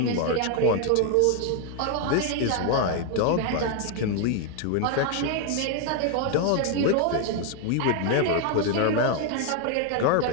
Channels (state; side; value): different; both; correlation 0.01